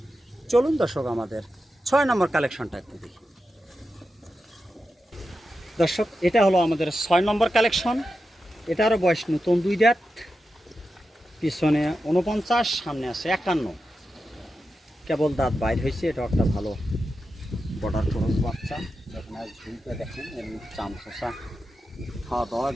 চলুন দর্শক আমাদের 6 নাম্বার কালেকশনটা একটু দেখি। দর্শক, এটা হলো আমাদের 6 নম্বর কালেকশন। এটারও বয়স নতুন 2 দাঁত, পিছনে 49, সামনে আছে 51, কেবল দাঁত বাইর হয়েছে। এটা একটা ভালো বর্ডার ক্রস বাচ্চা। দেখেন আর ঝুলটা দেখেন, এমনি চামচা, খাওয়া দাওয়া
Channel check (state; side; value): normal; both; correlation 0.90